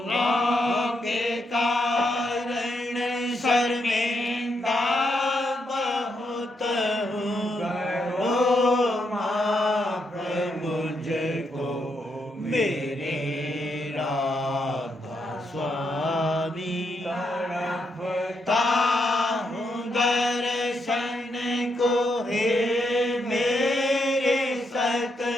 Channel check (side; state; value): both; normal; correlation 0.80